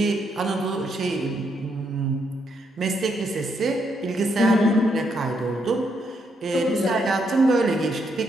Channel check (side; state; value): both; normal; correlation 0.77